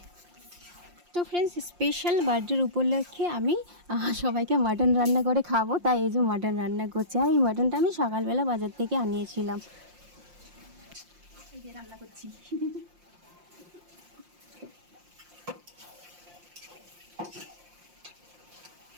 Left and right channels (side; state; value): left; late; 5.7 ms